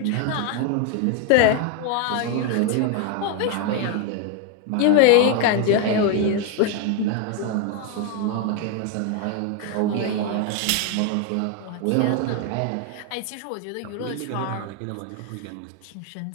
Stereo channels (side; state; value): both; different; correlation 0.01